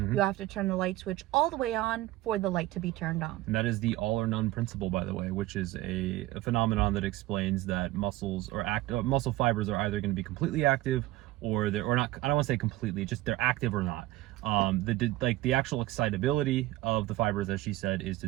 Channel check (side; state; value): left; quieter; 17.2 dB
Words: have to turn the light switch all the way on for the light to be turned on. And that is the all or none principle, by the way, which is a phenomenon that explains that muscles or muscle fibers are either going to be completely active or not. I don't want to say completely, just they're active or not. The actual excitability of the fibers, as she said, is